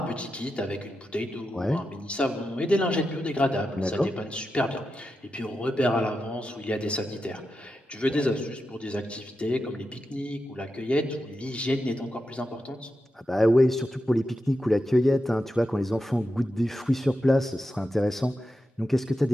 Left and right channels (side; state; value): both; normal; correlation 0.89